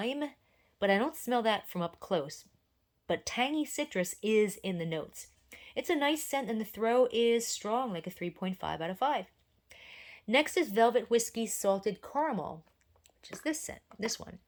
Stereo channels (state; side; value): identical; both; correlation 1.00